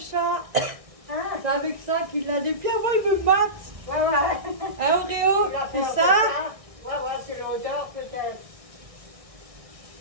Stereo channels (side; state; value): left; late; 1.6 ms